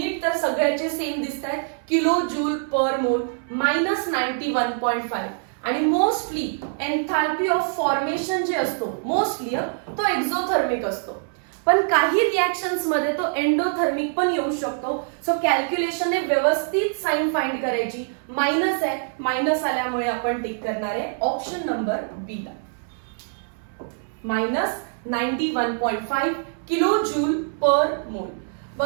तर सगळ्याचे सेम दिसत आहेत, किलो जूल पर मोल, -91.5. आणि मोस्टली एन्थाल्पी ऑफ फॉर्मेशन जे असतो, मोस्टली तो एक्झोथर्मिक असतो, पण काही रिॲक्शन्स मध्ये तो एंडोथर्मिक पण येऊ शकतो. सो कॅल्क्युलेशनने व्यवस्थित साइन फाइंड करायची. मायनस आहे, मायनस आल्यामुळे आपण टिक करणार आहे ऑप्शन नंबर बी ला, -91.5 किलो जूल पर मोल.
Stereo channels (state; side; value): silent; left; 59 dB below the other